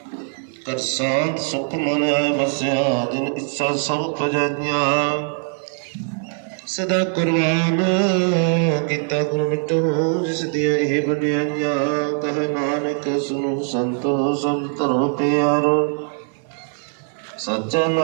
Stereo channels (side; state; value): left; silent; 56 dB below the other